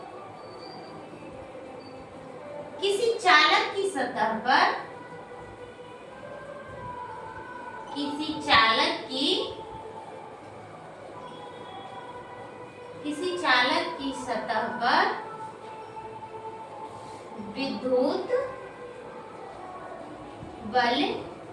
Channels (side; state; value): both; identical; correlation 1.00